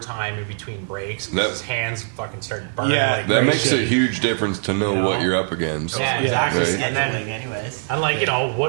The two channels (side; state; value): left; silent; 62 dB below the other